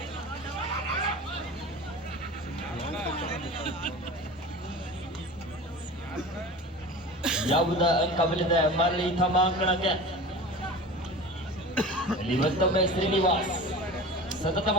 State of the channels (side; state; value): both; normal; correlation 0.35